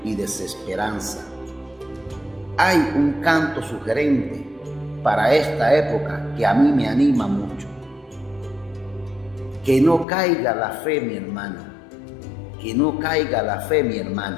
y desesperanza. Hay un canto sugerente para esta época que a mí me anima mucho. Que no caiga la fe, mi hermano. Que no caiga la fe, mi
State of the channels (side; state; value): right; drops out; at 10.1 s